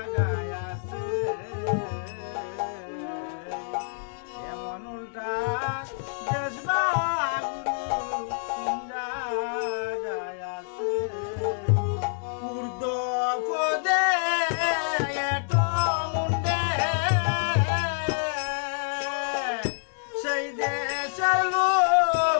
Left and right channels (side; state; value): right; silent; 60 dB below the other